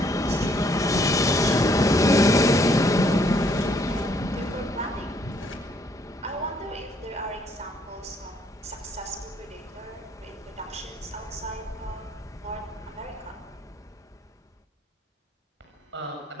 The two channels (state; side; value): normal; both; correlation 0.67